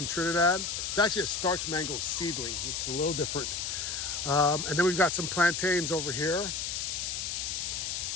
Trinidad. It's actually a starch mango seedling, which is a little different. And then we've got some plantains over here.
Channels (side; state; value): left; noise; hiss, 3 dB below the sound